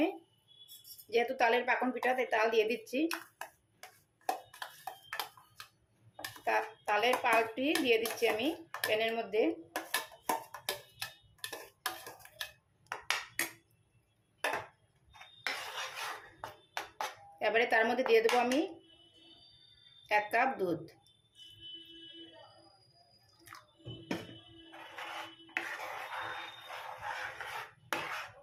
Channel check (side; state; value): both; identical; correlation 1.00